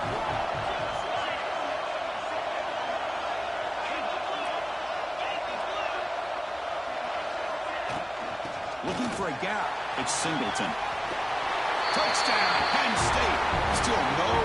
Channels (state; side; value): identical; both; correlation 1.00